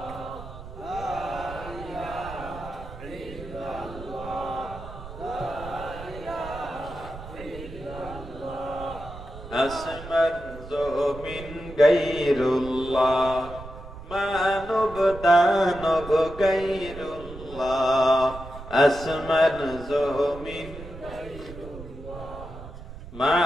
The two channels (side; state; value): right; noise; rumble, 13 dB below the sound